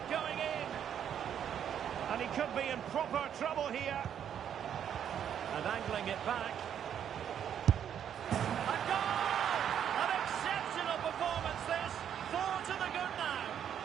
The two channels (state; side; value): quieter; left; 9.1 dB